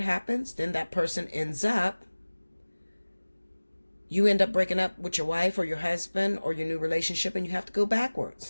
happens, then that person you end up breaking up with your wife or your husband or your new relationship, and you have to go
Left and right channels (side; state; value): both; inverted; correlation -1.00